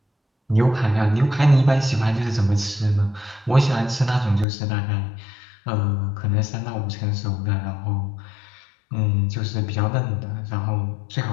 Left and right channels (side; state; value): right; drops out; at 4.5 s